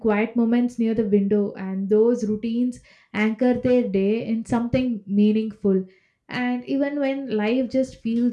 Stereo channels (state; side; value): identical; both; correlation 1.00